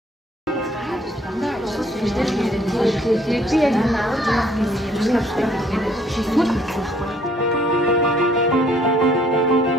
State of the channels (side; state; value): both; normal; correlation 0.62